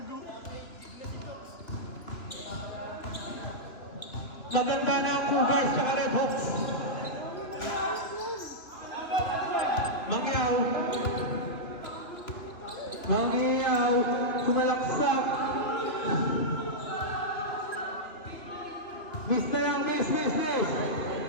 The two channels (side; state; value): right; late; 2.9 ms